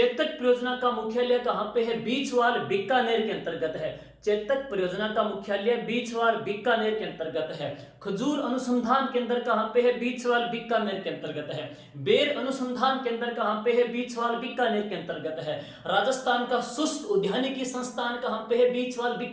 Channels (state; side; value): identical; both; correlation 1.00